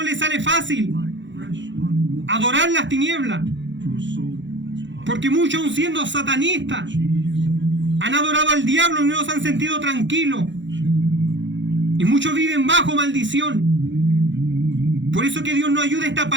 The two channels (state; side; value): late; left; 0.54 ms